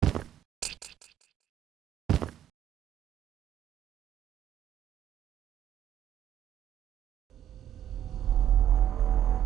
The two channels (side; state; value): left; quieter; 10.8 dB